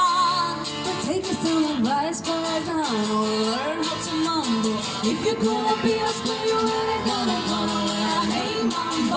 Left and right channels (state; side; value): identical; both; correlation 1.00